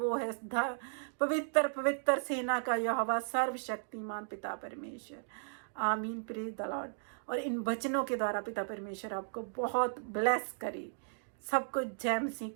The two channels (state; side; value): silent; left; digital silence